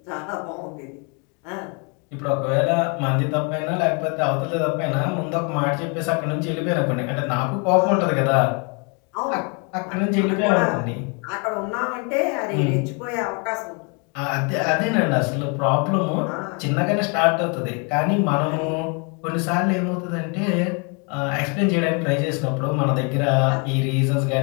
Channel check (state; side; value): quieter; right; 34.7 dB